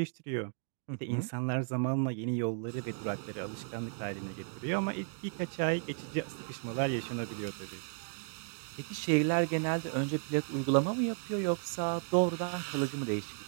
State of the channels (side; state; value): left; silent; 55 dB below the other